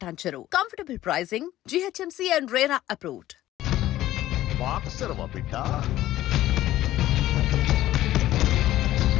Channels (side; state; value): right; quieter; 14.5 dB